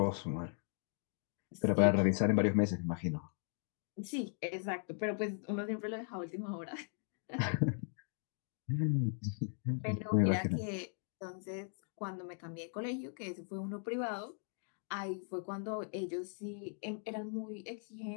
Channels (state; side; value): silent; right; 52 dB below the other